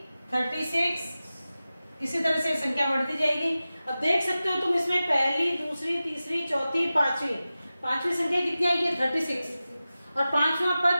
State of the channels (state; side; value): inverted; both; correlation -0.95